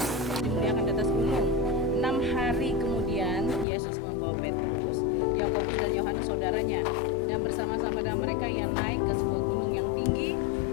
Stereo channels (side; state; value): right; drops out; at 3.7 s